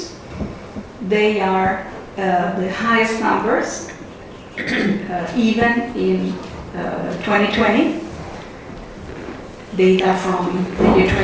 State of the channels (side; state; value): both; identical; correlation 1.00